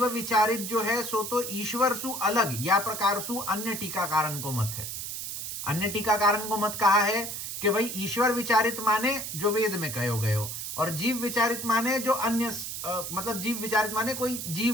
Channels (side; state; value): right; noise; hiss, 6 dB below the sound